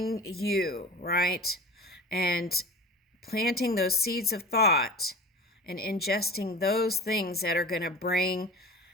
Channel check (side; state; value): both; normal; correlation 0.35